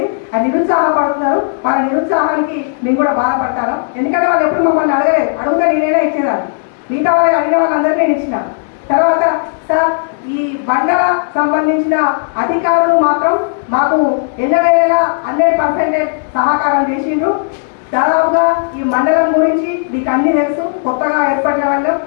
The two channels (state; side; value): silent; right; digital silence